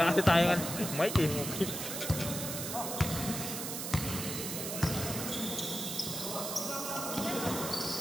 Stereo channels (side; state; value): right; noise; hiss, 4 dB below the sound